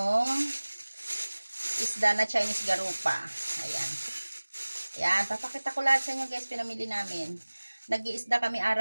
isda na Chinese garupa. Ayan. Ayan. Papakita ko lahat sa inyo guys, pinamili namin. Nag-iisda kami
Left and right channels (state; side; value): inverted; both; correlation -1.00